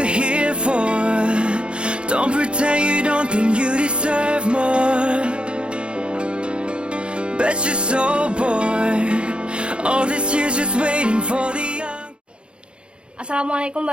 here for? Don't pretend you don't think you deserve more. Bet you're so bored. All this years just waiting for the young. Assalamualaikum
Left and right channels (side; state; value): left; late; 0.056 ms